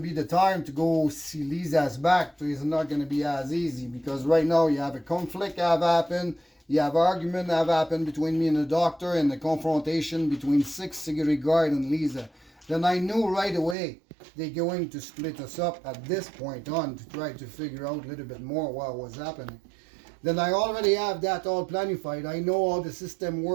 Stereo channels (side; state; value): left; drops out; at 13.8 s